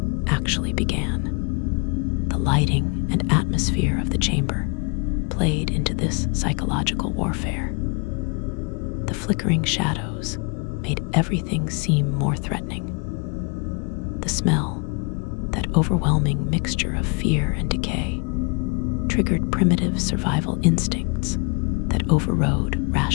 actually began. The lighting and atmosphere of the chamber played into this psychological warfare. The flickering shadows made everything seem more threatening. The smell, that overwhelming mixture of fear and decay, triggered primitive survival instincts that overrode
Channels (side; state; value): right; quieter; 32.8 dB